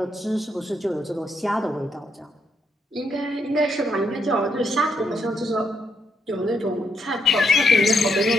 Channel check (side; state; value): both; normal; correlation 0.77